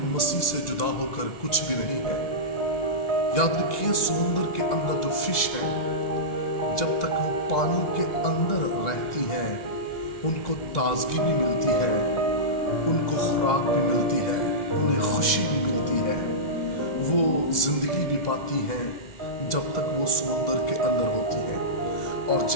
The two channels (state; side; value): late; right; 2.0 ms